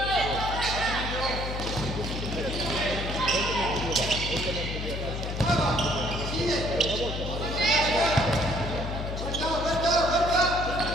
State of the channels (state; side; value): noise; left; hum, 5 dB below the sound